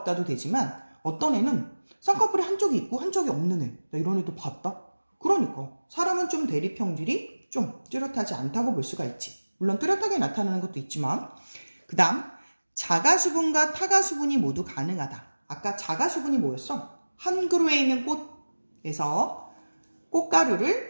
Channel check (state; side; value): inverted; both; correlation -1.00